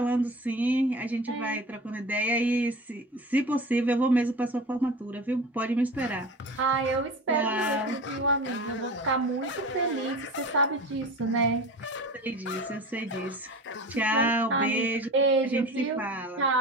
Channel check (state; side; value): normal; both; correlation 0.34